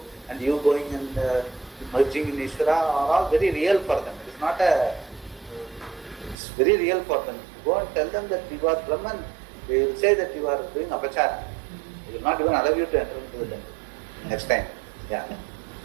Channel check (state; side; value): drops out; left; at 6.4 s